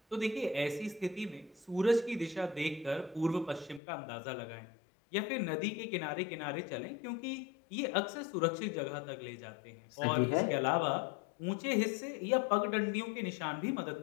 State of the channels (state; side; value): drops out; right; at 3.8 s